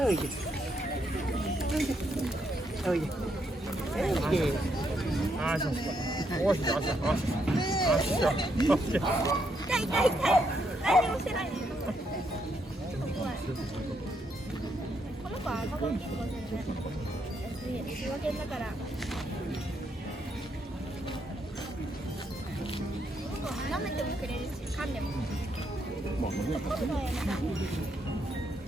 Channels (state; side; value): normal; both; correlation 0.76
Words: いで。おいで。おいで。あしょ。おしょ。あしょ。あしょ。痛い痛い痛い。何もしてないね。この子は赤子に育てる。仕分けだから。舐めてもくれるし、噛んでも。